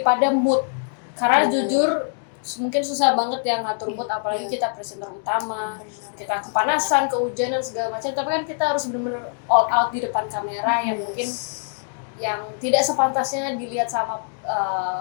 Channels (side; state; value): right; silent; digital silence